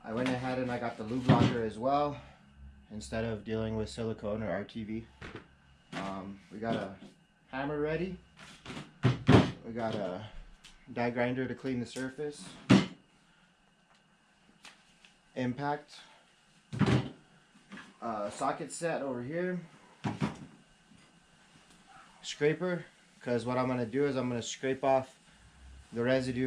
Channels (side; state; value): both; identical; correlation 1.00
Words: I went ahead and I got the lube locker as well, instead of dealing with silicone or RTV. We got a hammer ready. We got a die grinder to clean the surface. Impact. Socket set over here. Scraper, because what I'm going to do is I'm going to scrape off the